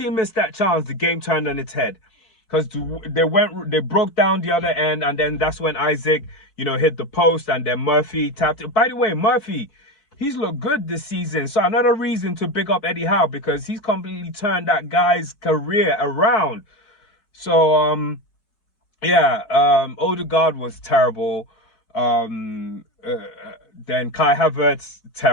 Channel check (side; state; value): right; late; 4.7 ms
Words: missed that chance, the game turned on its head. Because they broke down the other end, and then that's when Isaac, you know, hit the post, and then Murphy tapped it. By the way, Murphy, he's looked good this season. So another reason to big up Eddie Howe, because he's completely turned that guy's career around. So, Odegaard was terrible. Then Kai Havertz,